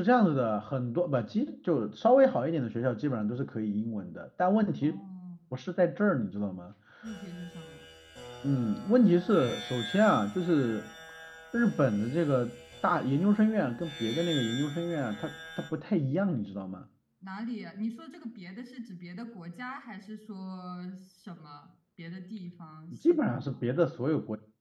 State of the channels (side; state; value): both; identical; correlation 1.00